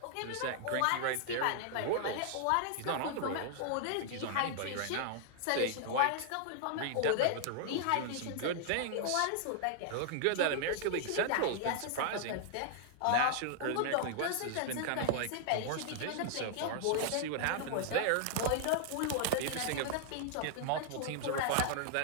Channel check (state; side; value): different; both; correlation -0.01